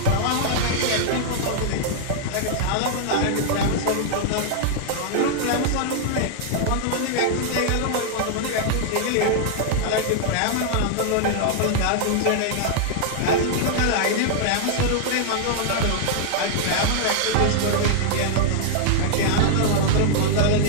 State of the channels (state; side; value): different; both; correlation -0.01